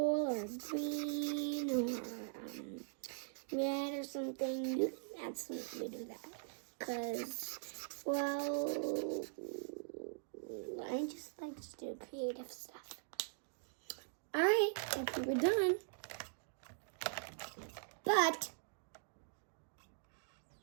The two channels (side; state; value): left; silent; digital silence